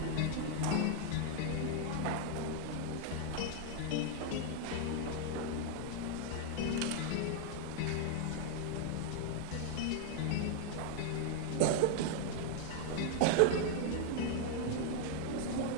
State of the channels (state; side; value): different; both; correlation 0.00